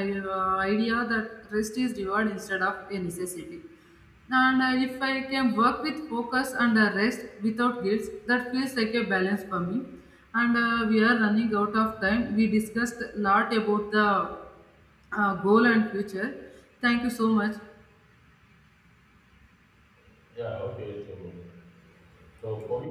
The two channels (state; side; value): identical; both; correlation 1.00